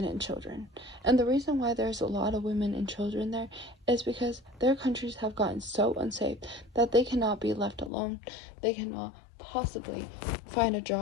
and children. And the reason why there's a lot of women and children there is because their countries have gotten so unsafe that they cannot be left alone. They cannot possibly find a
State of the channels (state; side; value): drops out; right; at 7.9 s